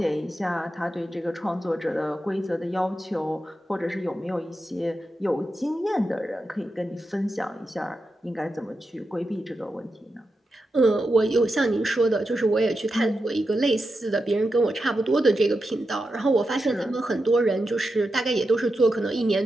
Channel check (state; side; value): normal; both; correlation 0.88